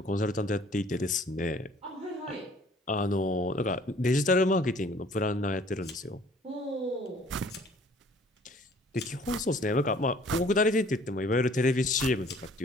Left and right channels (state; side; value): normal; both; correlation 0.55